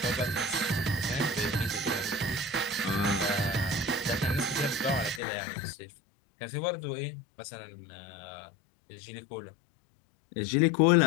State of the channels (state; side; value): drops out; right; at 5.2 s